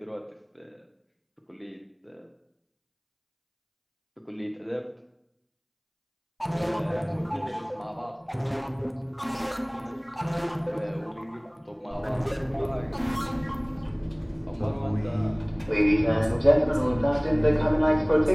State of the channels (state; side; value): identical; both; correlation 1.00